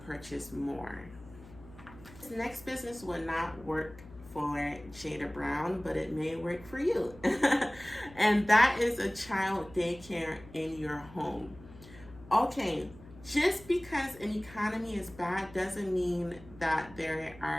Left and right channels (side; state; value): left; noise; hum, 20 dB below the sound